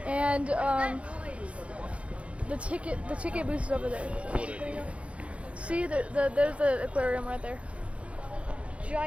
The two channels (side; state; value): left; late; 0.062 ms